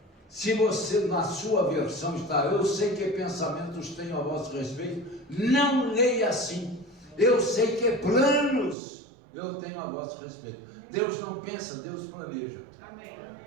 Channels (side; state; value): left; drops out; at 8.8 s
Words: Se você, na sua versão, está: eu sei que pensamentos tenho a vosso respeito, não leia assim. Eu sei que planos eu tenho a vosso respeito. Deus não pensa, Deus planeja. Amém.